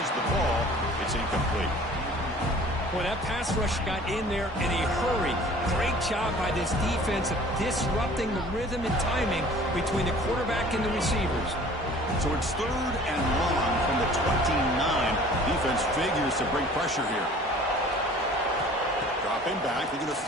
the ball. It's incomplete. Boy, that pass rush got in there in a hurry. Great job by this defense of disrupting the rhythm and timing between the quarterback and the receivers. So it's third and long from the 29. Defense figures to bring pressure here. Dropping back, they're going to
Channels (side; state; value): both; normal; correlation 0.48